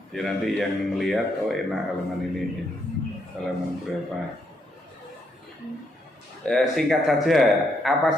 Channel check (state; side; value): normal; both; correlation 0.76